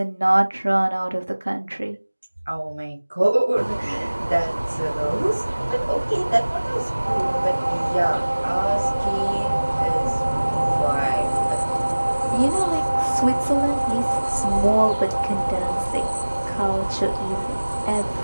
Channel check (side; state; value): both; inverted; correlation -1.00